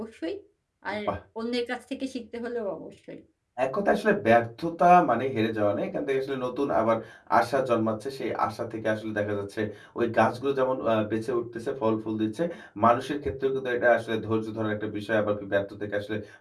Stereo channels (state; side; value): identical; both; correlation 1.00